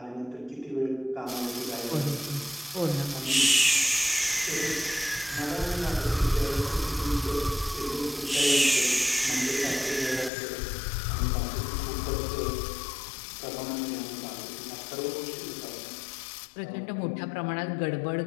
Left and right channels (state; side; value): drops out; right; at 10.3 s